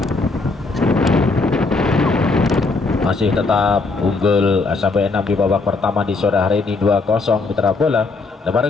Masih tetap unggul SMP 6 di babak pertama di sore hari ini 2-0 mitra bola. Lebar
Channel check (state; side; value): quieter; right; 3.7 dB